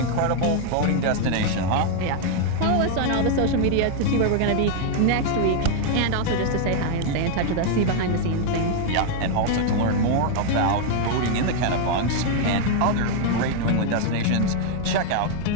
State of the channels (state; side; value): different; both; correlation 0.00